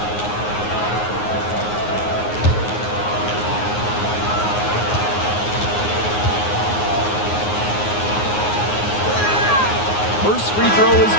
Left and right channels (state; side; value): late; right; 9.6 ms